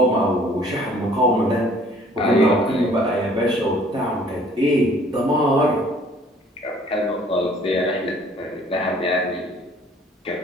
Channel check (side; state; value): both; normal; correlation 0.56